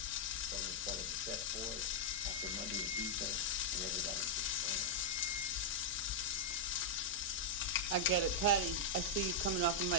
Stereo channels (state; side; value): normal; both; correlation -0.05